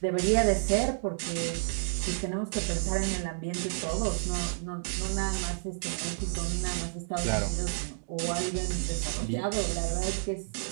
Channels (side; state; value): left; silent; digital silence